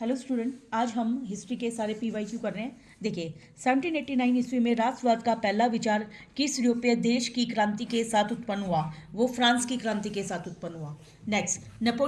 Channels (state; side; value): identical; both; correlation 1.00